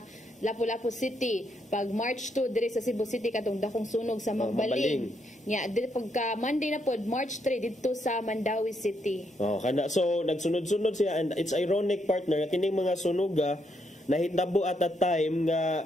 Lapu-Lapu City, pag March 2 diri sa Cebu City katong dakong sunog sa Magbaling. Nya pagka Monday na pod March 3 dito sa Mandawi City. Kana so nagsunod-sunod siya and it's ironic partner nga kining mga sunog nahitabo at a time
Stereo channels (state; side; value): normal; both; correlation 0.76